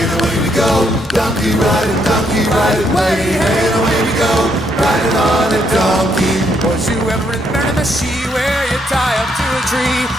and away we go, donkey riding, way hey and away we go, riding on a donkey. Was you ever in Miramichi, where you tie up to a tree,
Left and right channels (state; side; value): normal; both; correlation 0.74